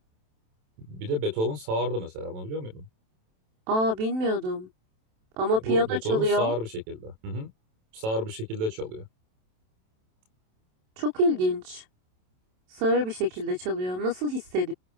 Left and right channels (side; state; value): left; late; 27 ms